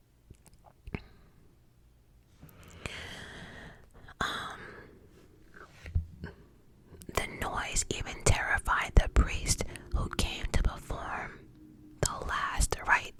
The noise even terrified the priest who came to perform the last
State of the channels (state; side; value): identical; both; correlation 1.00